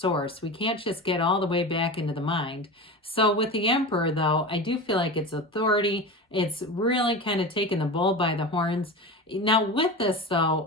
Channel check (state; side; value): normal; both; correlation 0.27